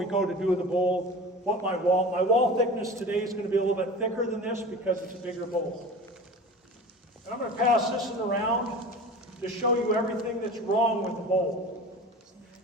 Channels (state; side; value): normal; both; correlation 0.35